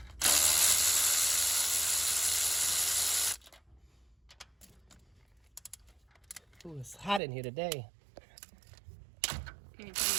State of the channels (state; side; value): drops out; left; at 7.2 s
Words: Ooh, it's hot in here today.